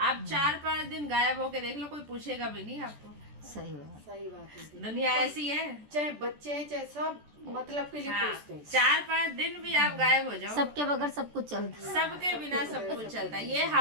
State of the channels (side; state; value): left; late; 14 ms